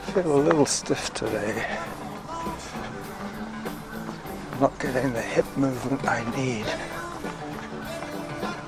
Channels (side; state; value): both; identical; correlation 1.00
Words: Feel a little stiff today. I'm not getting the hip movement I need